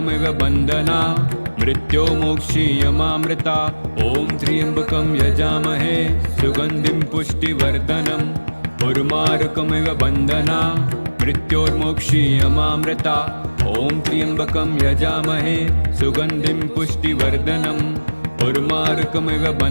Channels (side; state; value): both; inverted; correlation -1.00